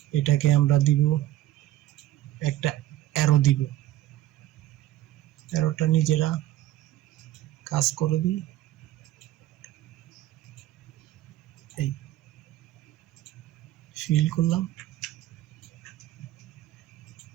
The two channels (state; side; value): quieter; left; 14.4 dB